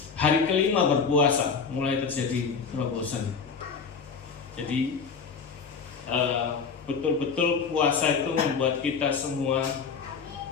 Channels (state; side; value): quieter; right; 5.6 dB